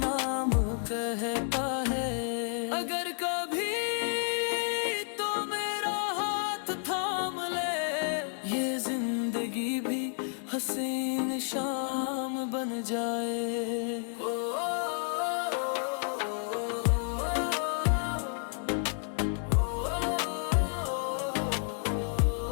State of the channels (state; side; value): silent; right; 57 dB below the other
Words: कहता है। अगर कभी जिंदगी भी हसीन शाम बन जाए।